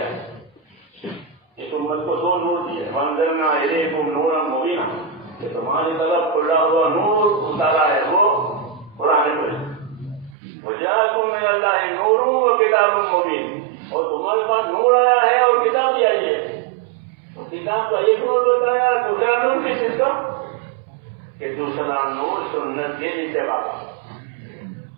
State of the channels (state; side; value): drops out; left; at 10.4 s